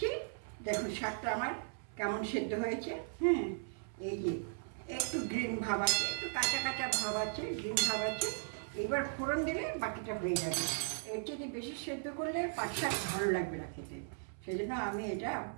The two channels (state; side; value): silent; left; 53 dB below the other